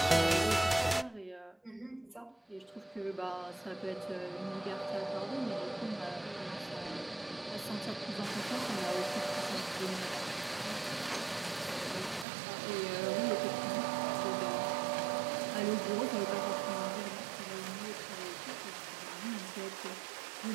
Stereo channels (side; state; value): left; drops out; at 12.2 s